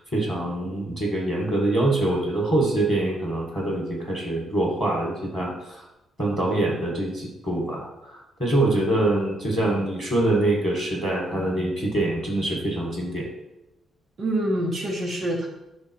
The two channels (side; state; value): both; normal; correlation 0.74